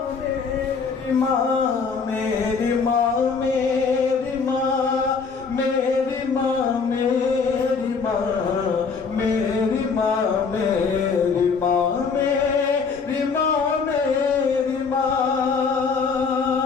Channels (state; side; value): quieter; right; 5.2 dB